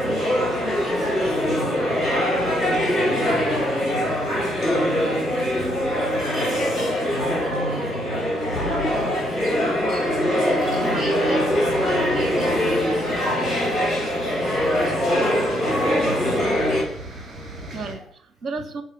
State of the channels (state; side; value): normal; both; correlation 0.74